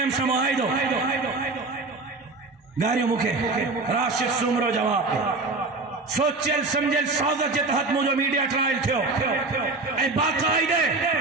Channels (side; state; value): left; quieter; 3.4 dB